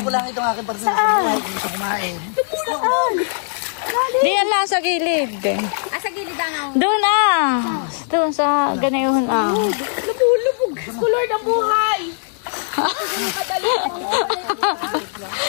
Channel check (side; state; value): right; silent; digital silence